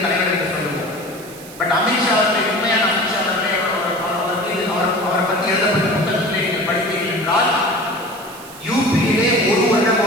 தலைவர் என்று சொல்லுவோம். பட் அமித்ஷா அவர்களை, உண்மையான அமித்ஷா அவர்களை அவரை பற்றி எழுதப்பட்ட புத்தகத்திலே நீங்கள் படித்தீர்கள் என்றால், யூபியிலே ஒரு வருடம்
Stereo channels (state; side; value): noise; right; hiss, 18 dB below the sound